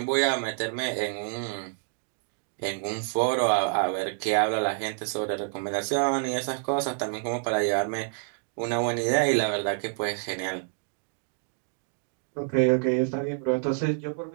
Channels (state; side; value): silent; left; digital silence